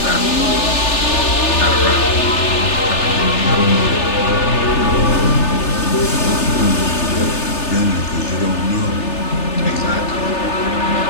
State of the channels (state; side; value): late; right; 3.4 ms